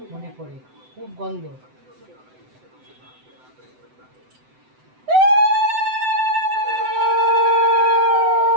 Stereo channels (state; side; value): late; left; 7.9 ms